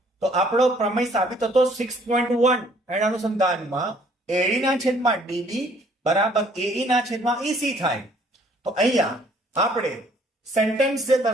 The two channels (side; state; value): both; normal; correlation 0.61